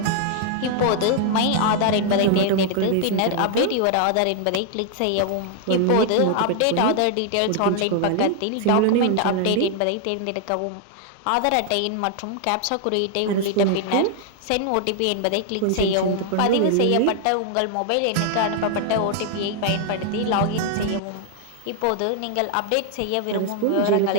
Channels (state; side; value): different; both; correlation 0.00